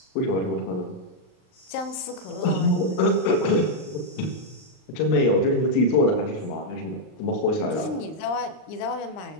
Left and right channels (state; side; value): late; right; 39 ms